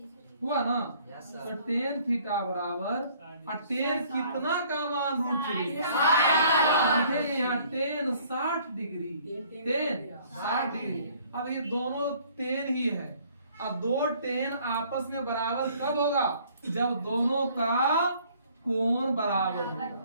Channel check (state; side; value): inverted; both; correlation -0.58